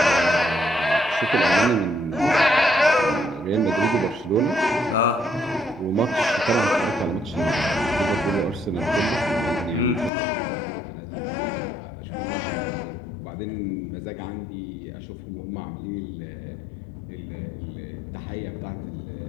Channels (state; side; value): drops out; right; at 10.1 s